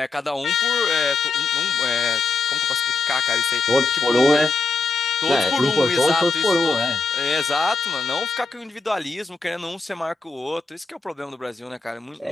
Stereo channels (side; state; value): right; quieter; 3.8 dB